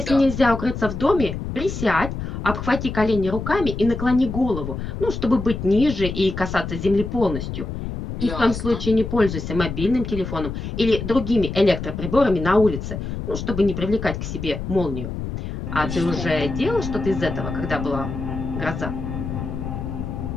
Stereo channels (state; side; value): noise; left; rumble, 6 dB below the sound